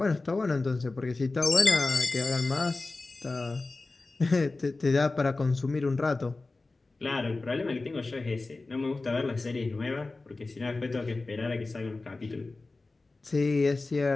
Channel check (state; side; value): quieter; right; 3.4 dB